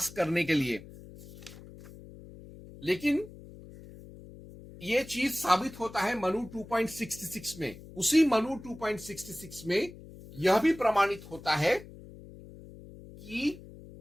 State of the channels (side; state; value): left; noise; hum, 17 dB below the sound